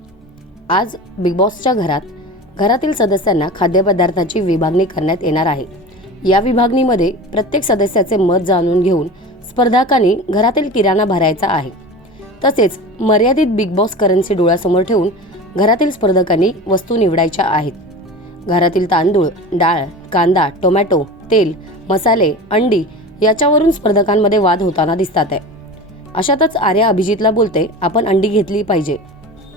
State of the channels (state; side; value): normal; both; correlation 0.32